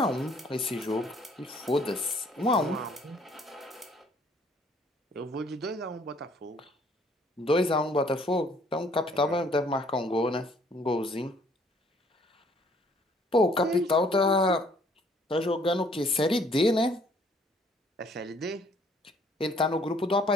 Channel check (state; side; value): normal; both; correlation 0.62